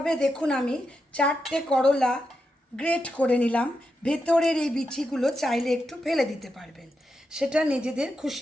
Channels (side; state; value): both; normal; correlation 0.86